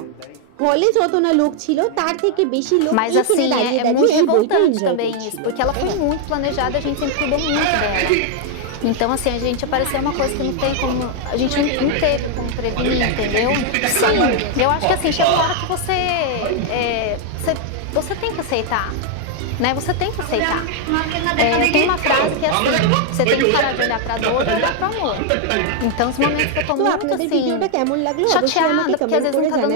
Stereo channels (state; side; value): different; both; correlation 0.00